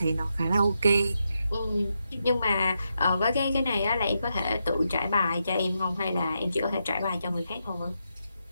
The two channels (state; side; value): inverted; both; correlation -0.84